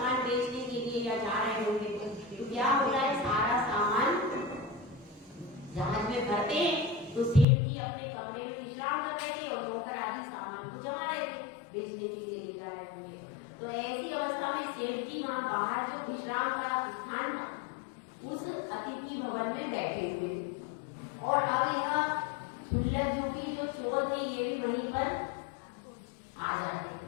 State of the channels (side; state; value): right; drops out; at 7.5 s